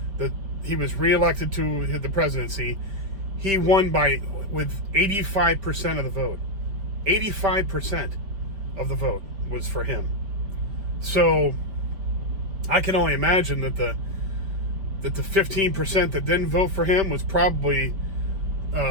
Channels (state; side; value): late; left; 5.1 ms